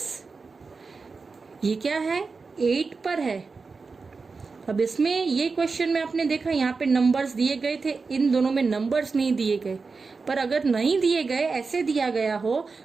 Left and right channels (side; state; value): left; quieter; 4.5 dB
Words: ये क्या है? 8 पर है. अब इसमें ये क्वेश्चन में आपने देखा यहाँ पे नंबर्स दिए गए थे, इन दोनों में नंबर्स नहीं दिए गए. पर अगर नहीं दिए गए, ऐसे दिया गया हो,